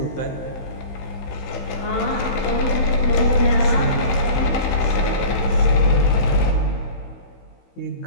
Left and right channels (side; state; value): right; late; 16 ms